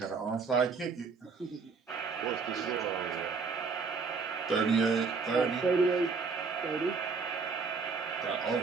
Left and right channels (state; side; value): quieter; left; 4.9 dB